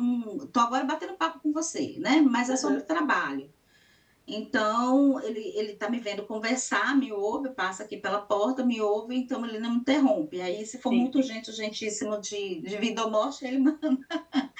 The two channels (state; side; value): identical; both; correlation 1.00